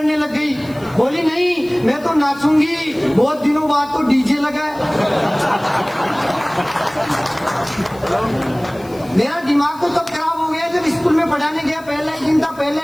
लग गई, बोली नहीं मैं तो नाचूंगी, बहुत दिनों बाद तो डीजे लगा है। मेरा दिमाग तो तब खराब हो गया जब स्कूल में पढ़ाने गया, पहला ही दिन था, पहला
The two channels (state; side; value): noise; left; hiss, 24 dB below the sound